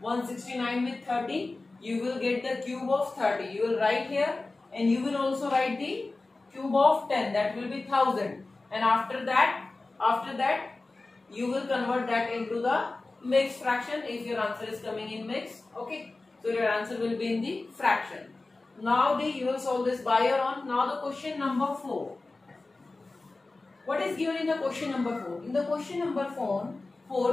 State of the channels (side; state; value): right; quieter; 3.3 dB